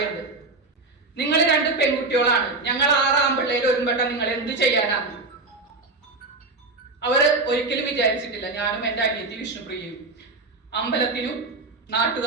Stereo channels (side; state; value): left; quieter; 3.5 dB